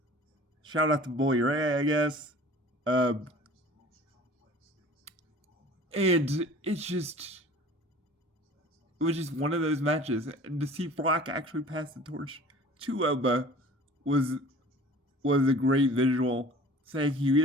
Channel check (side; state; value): both; normal; correlation 0.45